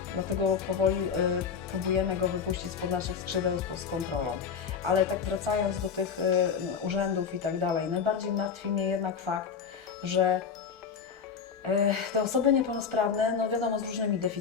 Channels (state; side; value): quieter; right; 6.4 dB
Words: Dlatego powoli próbujemy go wypuścić spod naszych skrzydeł z kontrolą. Ale tak wracając do tych urzędów i tak dalej, najbardziej martwi mnie jednak fakt, że Te osoby niepełnosprawne, no wiadomo, z różnymi